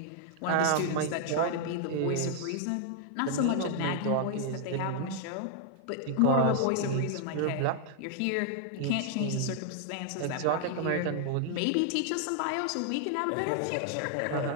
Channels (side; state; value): both; different; correlation 0.00